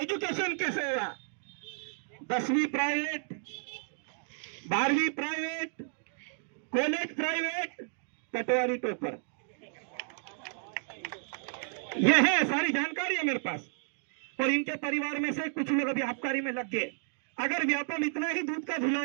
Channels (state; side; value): silent; left; digital silence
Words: कैसे हुआ, 10वीं प्राइवेट, 12वीं प्राइवेट, कॉलेज प्राइवेट, पटवारी टॉपर। यह है सारी जानकारी है मेरे पास। और इनके परिवार में से कुछ लोग अभी आबकारी में लग गए। अगर व्यापम इतना ही दूध का धुला